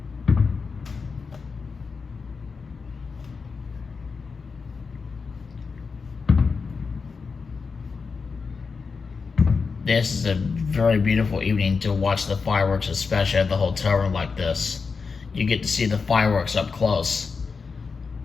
This is a very beautiful evening to watch the fireworks, especially at the hotel room like this. You get to see the fireworks up close.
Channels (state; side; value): quieter; right; 5.0 dB